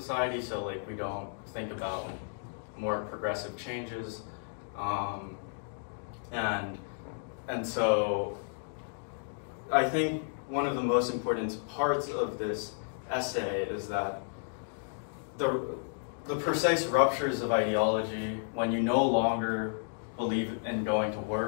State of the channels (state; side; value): silent; right; digital silence